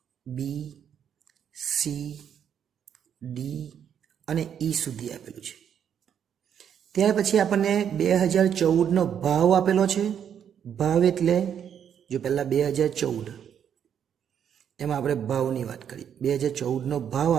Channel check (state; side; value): quieter; left; 8.6 dB